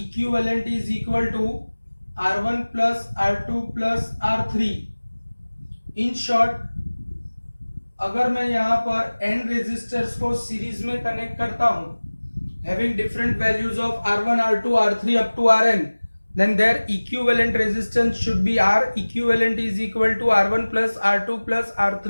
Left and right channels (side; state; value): both; inverted; correlation -1.00